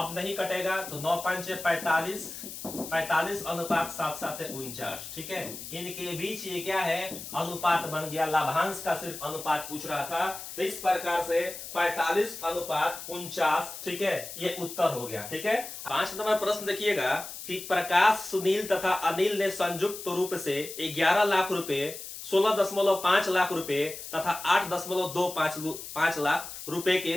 नहीं कटेगा तो 9 5 45, 45 अनुपात 7 7 49। ठीक है, इनके बीच ये क्या है? अनुपात बन गया। लाभांश का सिर्फ अनुपात पूछ रहा था, तो इस प्रकार से 45 अनुपात 49। ठीक है, ये उत्तर हो गया। ठीक है, 5 नंबर प्रश्न देखिएगा कि प्रकाश, सुनील तथा अनिल ने संयुक्त रूप से 11 लाख रुपए, 16.5 लाख रुपए तथा 8.25 लाख रुपए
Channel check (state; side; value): noise; left; hiss, 10 dB below the sound